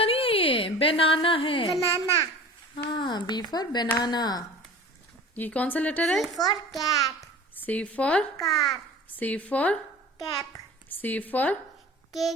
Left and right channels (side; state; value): both; normal; correlation 0.40